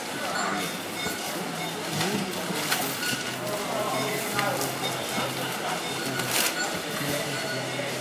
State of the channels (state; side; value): identical; both; correlation 1.00